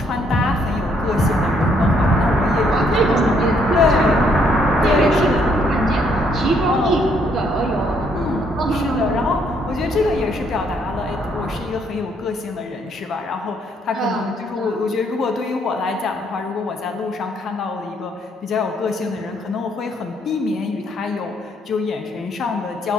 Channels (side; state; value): both; normal; correlation 0.69